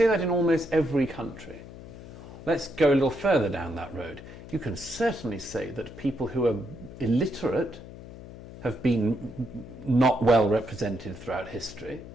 that in almost every country. Let's go a little further down that road. You can certainly say that people who are illiterate have been not well represented throughout history,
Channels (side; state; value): left; noise; hum, 15 dB below the sound